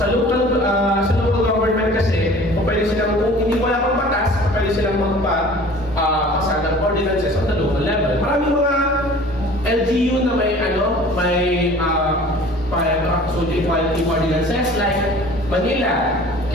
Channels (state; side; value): normal; both; correlation 0.46